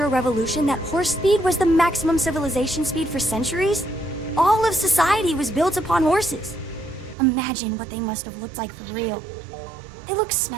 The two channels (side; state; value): left; drops out; at 7.2 s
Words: Revolution that horse speed was the maximum civilization speed for centuries? All of society was built upon horses. Imagine what they must have looked like for real. They look